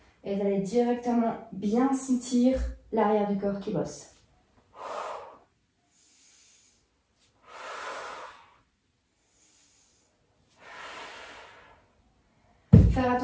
Et vous allez directement bien sentir l'arrière du corps qui bosse. Faire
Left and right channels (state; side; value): identical; both; correlation 1.00